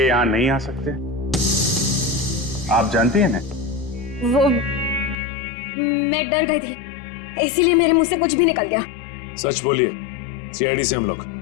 यहाँ नहीं आ सकते? आप जानती हैं ना? वो मैं डर गई थी, इसीलिए मेरे मुंह से कुछ भी निकल गया। सच बोलिए, सीआईडी से हम लोग।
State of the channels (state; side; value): drops out; right; at 5.2 s